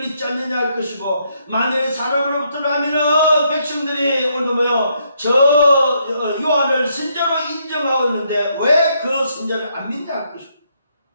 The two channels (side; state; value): both; inverted; correlation -0.74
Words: 않느냐 할 것이고 만일 사람으로부터라면 백성들이 오늘 뭐요 저 요한을 선지자로 인정하고 있는데 왜 그 선지자를 안 믿냐 할 것이고